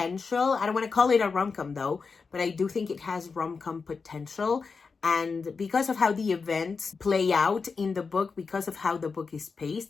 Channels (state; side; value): quieter; right; 4.9 dB